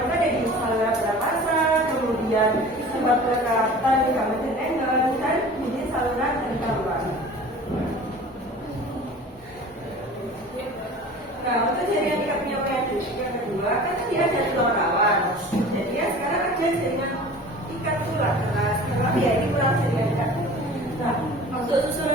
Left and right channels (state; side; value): normal; both; correlation 0.41